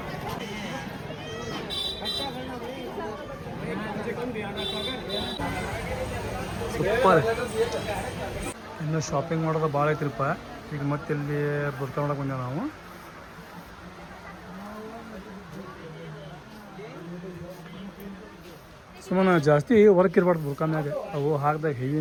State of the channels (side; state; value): both; identical; correlation 1.00